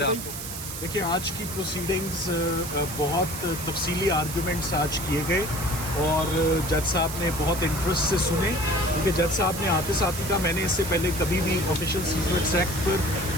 आपको? देखिए, आज की प्रोसीडिंग्स बहुत तफसीली आर्गूमेंट्स आज किए गए और जज साहब ने बहुत इंटरेस्ट से सुने, क्योंकि जज साहब ने आते साथ ही कहा मैंने इससे पहले कभी भी ऑफिशियल सीक्रेट्स एक्ट पर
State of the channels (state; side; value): noise; right; hiss, 8 dB below the sound